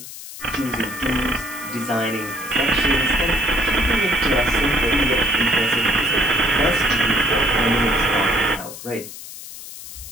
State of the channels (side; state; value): left; noise; hiss, 13 dB below the sound